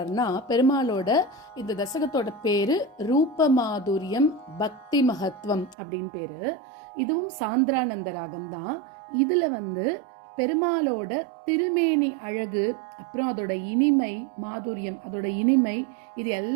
பெருமாளோட இந்த தசகத்தோட பேரு ரூபமாதுரியம் பக்தி மகத்துவம் அப்படின்னு பேரு. இதுவும் சாந்திரானந்த ராகம் தான். இதுல பெருமாளோட திருமேனி அழகு, அப்புறம் அதோட இனிமை, மாதுரியம், அதோட இனிமை, இது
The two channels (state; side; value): drops out; left; at 5.8 s